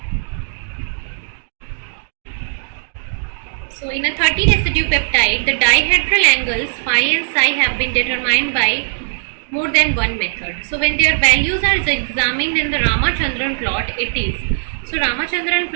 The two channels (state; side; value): silent; left; digital silence